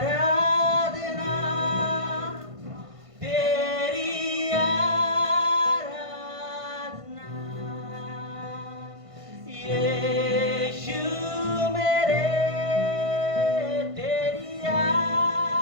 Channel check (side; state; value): left; late; 1.5 ms